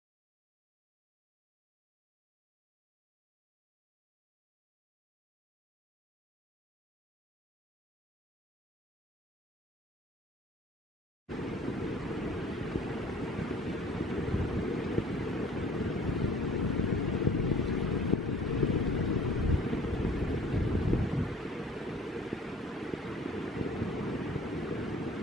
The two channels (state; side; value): normal; both; correlation 0.50